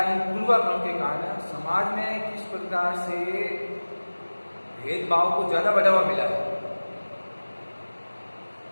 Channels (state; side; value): inverted; both; correlation -1.00